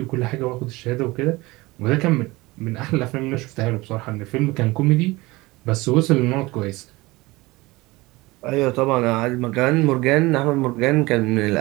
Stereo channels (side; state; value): left; quieter; 21.5 dB